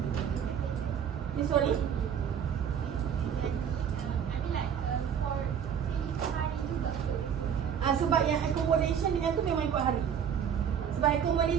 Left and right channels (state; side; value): quieter; left; 8.2 dB